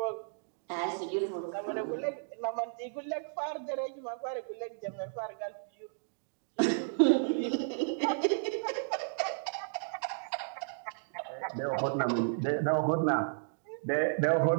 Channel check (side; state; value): left; silent; digital silence